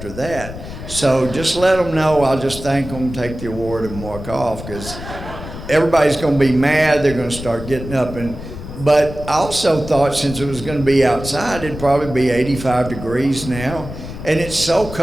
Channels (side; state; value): left; noise; rumble, 11 dB below the sound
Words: that. So just let them know, I'll just thank them, take the award and walk off, because everybody's gonna be mad, they're gonna start getting up. But I also thought since it was gonna be outside, it'd probably be 85 degrees now, and it's so